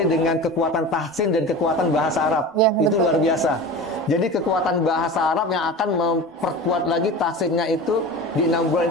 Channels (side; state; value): both; normal; correlation 0.32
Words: dengan kekuatan tahsin dan kekuatan bahasa Arab. Ya, itu luar biasa. Jadi kekuatan bahasa Arab yang akan memperkuat lagi tahsinnya itu di 6